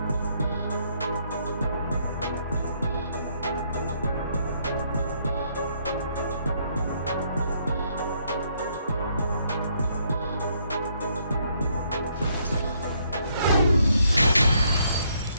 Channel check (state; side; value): inverted; both; correlation -0.71